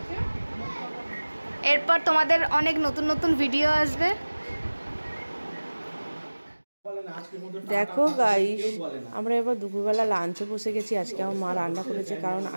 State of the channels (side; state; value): both; inverted; correlation -1.00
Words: এরপর তোমাদের অনেক নতুন নতুন ভিডিও আসবে। দেখো গাইস, আমরা এবার দুপুরবেলা লাঞ্চে বসে গেছি। আজকে আমার মা রান্না করেছে, কারণ